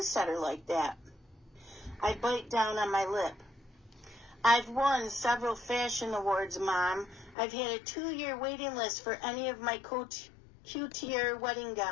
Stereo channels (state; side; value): drops out; right; at 7.4 s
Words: like that. I bite down on my lip. I've won several fashion awards, Mom. I've had a 2-year waiting list for any of my couture wedding